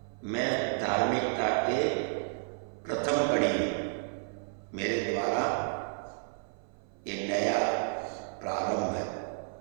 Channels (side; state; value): left; silent; 57 dB below the other